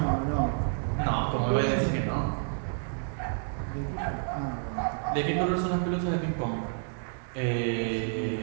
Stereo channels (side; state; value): left; silent; digital silence